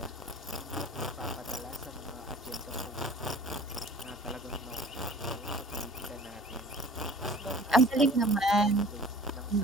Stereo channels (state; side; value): normal; both; correlation 0.46